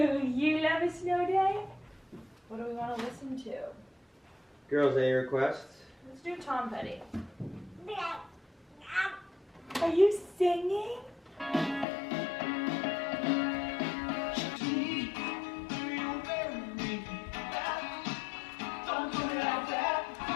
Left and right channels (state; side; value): drops out; right; at 11.9 s